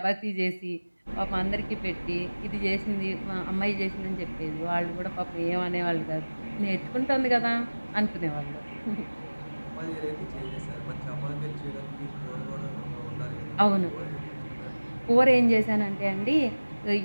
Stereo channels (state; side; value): inverted; both; correlation -1.00